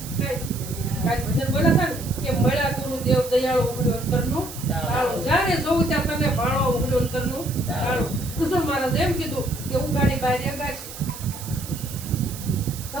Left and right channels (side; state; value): right; noise; hiss, 12 dB below the sound